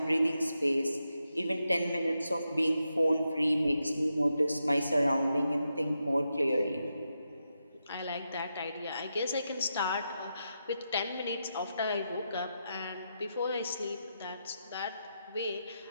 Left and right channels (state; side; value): inverted; both; correlation -0.86